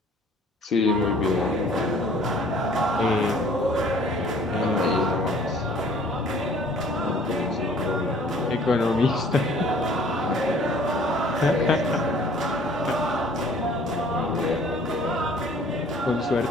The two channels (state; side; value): normal; both; correlation 0.54